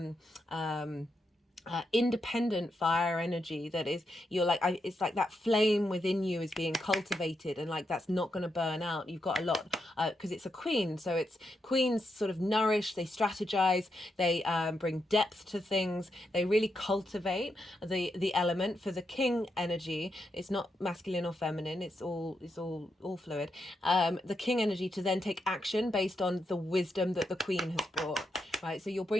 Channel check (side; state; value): both; normal; correlation 0.83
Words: independent fire energy that is, you're like, it's like that flame within you is being cultivated, and like that's not going to burn out. You've got a lot, because it's a queen, so it's queens sort of nourish, they strategize, they bring depth to things, they really cultivate the element. For the king energy, it's not masculine or feminine, it's all fluid. The king energy to then take action based on the wisdom that the queen has brought. Right, so you're